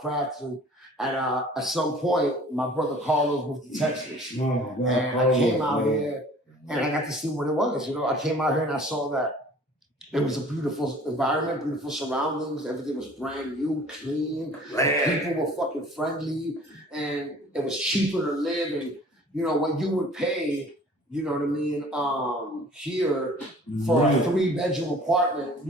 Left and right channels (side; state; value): both; normal; correlation 0.49